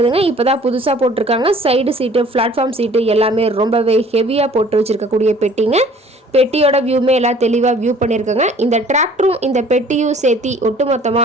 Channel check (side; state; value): both; normal; correlation 0.52